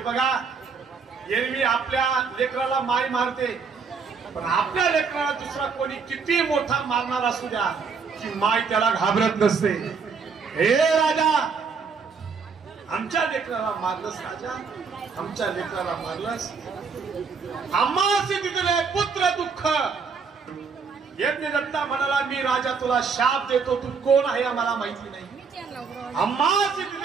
एरवी आपल्या लेकराला माय मारते, पण आपल्या लेकराला दुसरा कोणी किती मोठा मारणार असू द्या, की माय त्याला घाबरत नसते. हे राजा, आमच्या लेकराला मारलंस राजा, आमच्या लेकराला मारलंस. आम्हासी दिले पुत्र दुःख. यज्ञ दत्ता म्हणाला, मी राजा तुला शाप देतो, तू कोण आहे आम्हाला माहिती नाही. आम्हासी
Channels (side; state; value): left; quieter; 5.4 dB